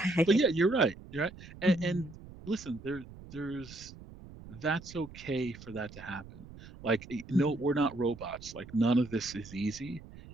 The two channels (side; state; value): right; noise; rumble, 17 dB below the sound